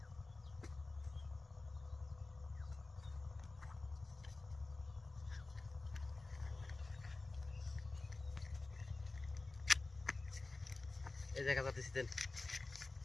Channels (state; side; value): quieter; right; 3.3 dB